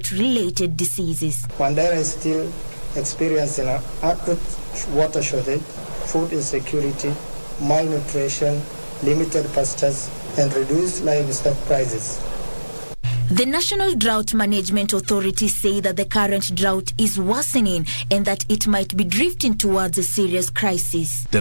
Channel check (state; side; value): inverted; both; correlation -1.00